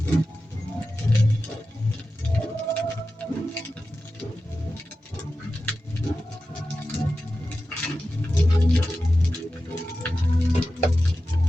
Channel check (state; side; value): normal; both; correlation 0.93